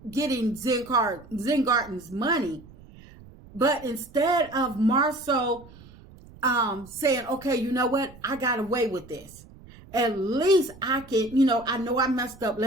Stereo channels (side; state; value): right; noise; rumble, 21 dB below the sound